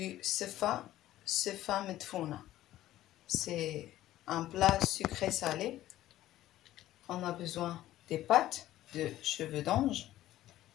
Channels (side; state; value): right; quieter; 14.2 dB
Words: sefa medfouna. C'est un plat sucré salé. On a besoin des pâtes, de cheveux d'ange